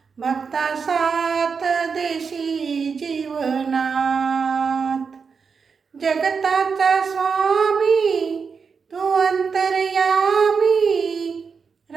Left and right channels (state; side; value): quieter; left; 5.6 dB